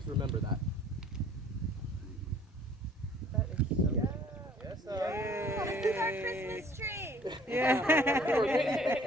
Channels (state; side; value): normal; both; correlation 0.55